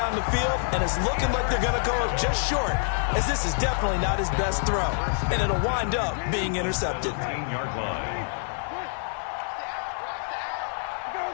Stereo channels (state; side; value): silent; right; digital silence